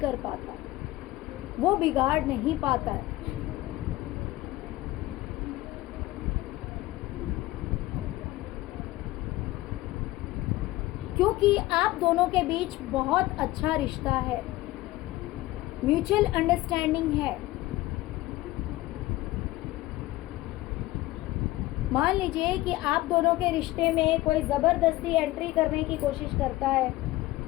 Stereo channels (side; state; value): right; quieter; 17.7 dB